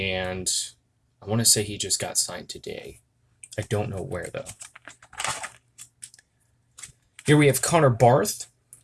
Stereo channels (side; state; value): both; identical; correlation 1.00